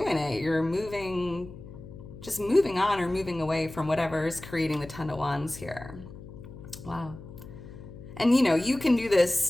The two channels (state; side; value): noise; left; hum, 15 dB below the sound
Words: it. You're just moving on or moving away from whatever is creating the Ten of Wands here. Wow. And you can do this